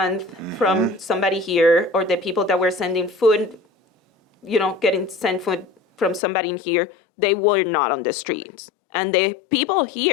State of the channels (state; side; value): drops out; right; at 6.2 s